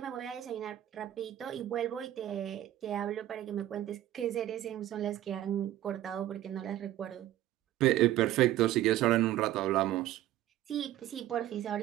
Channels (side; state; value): left; quieter; 13.5 dB